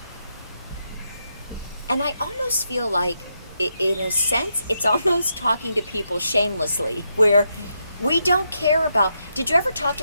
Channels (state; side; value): inverted; both; correlation -0.82